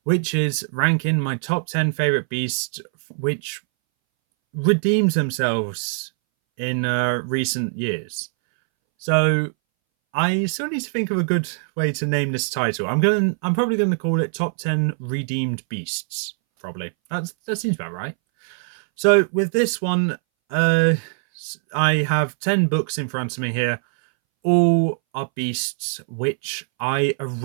which is ranking my top 10 favorite beasts which redeems themselves in recent years. So I still need to think of a good way to name this title. I'm probably going to call it Top 10 Redeemed Beasts. Probably. That seems about right. So with this one, I have 10 books in front of me here. All are beasts which I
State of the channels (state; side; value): silent; left; 62 dB below the other